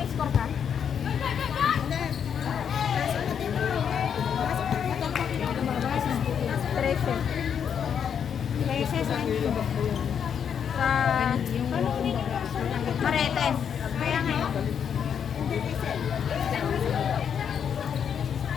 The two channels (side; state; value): right; quieter; 7.9 dB